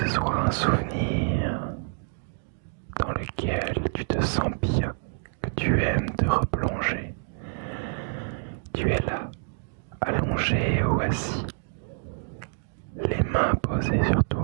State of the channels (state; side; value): silent; left; 60 dB below the other